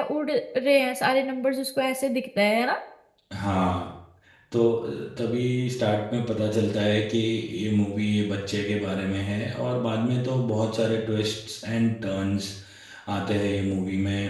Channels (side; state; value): both; identical; correlation 1.00